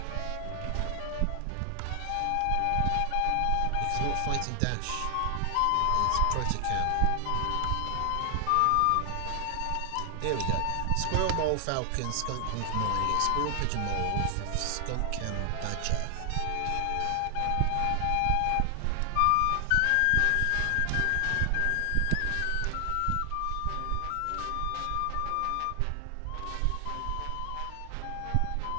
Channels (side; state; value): both; different; correlation 0.00